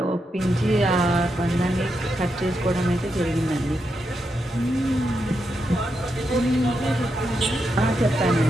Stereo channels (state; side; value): normal; both; correlation 0.84